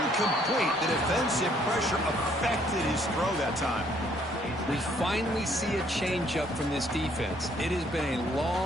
The defensive pressure affected his throw that time. We finally see a changeup from this defense. It has been a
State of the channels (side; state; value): both; normal; correlation 0.65